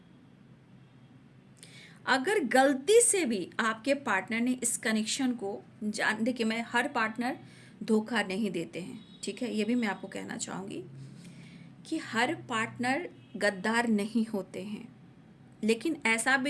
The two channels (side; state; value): both; identical; correlation 1.00